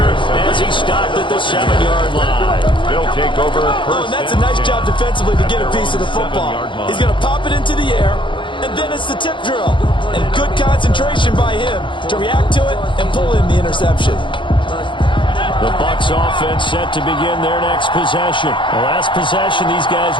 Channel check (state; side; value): late; right; 0.24 ms